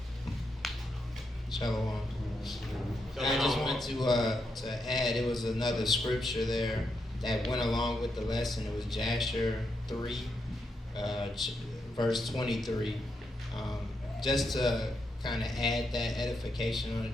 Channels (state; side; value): normal; both; correlation 0.82